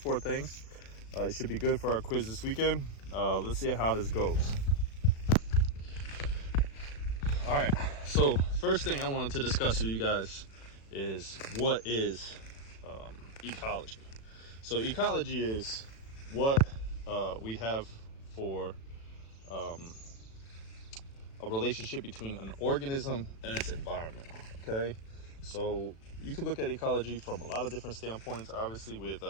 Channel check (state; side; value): late; right; 36 ms